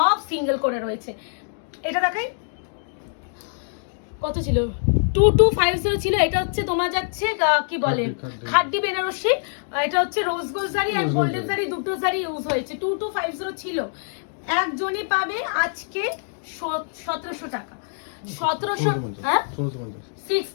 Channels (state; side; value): silent; right; digital silence